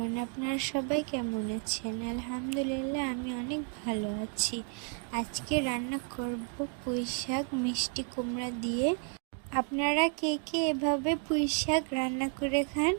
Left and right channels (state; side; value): quieter; left; 39.5 dB